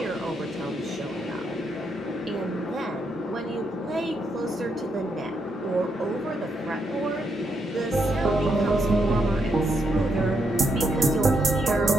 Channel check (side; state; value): both; normal; correlation 0.78